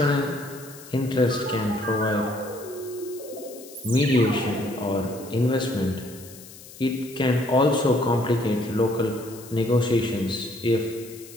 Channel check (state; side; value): noise; left; hiss, 18 dB below the sound